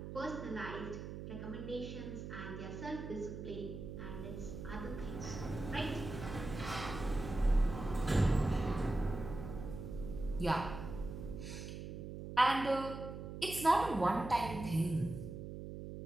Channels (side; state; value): right; noise; hum, 8 dB below the sound